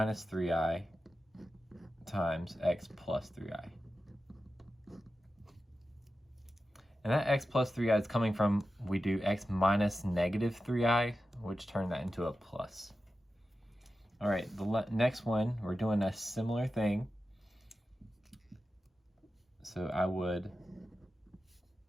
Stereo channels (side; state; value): both; normal; correlation 0.92